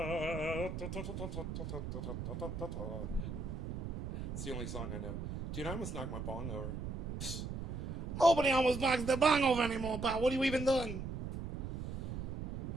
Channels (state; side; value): noise; right; rumble, 5 dB below the sound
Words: It's the only song I know. Dude, I almost knocked my bong over. Nobody almost knocks the bong over anymore, pal. What are you even doing?